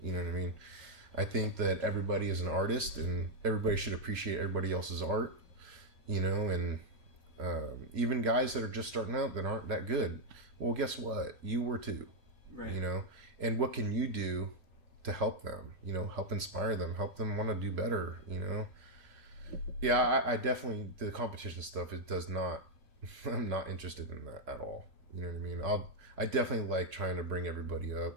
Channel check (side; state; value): left; late; 2.9 ms